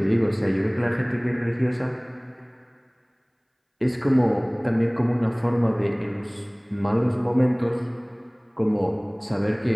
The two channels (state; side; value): identical; both; correlation 1.00